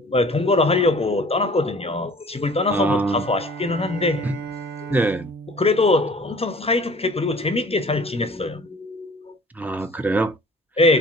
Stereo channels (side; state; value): both; normal; correlation 0.49